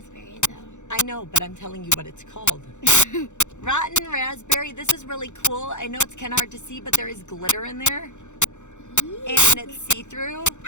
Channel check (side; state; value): right; late; 0.84 ms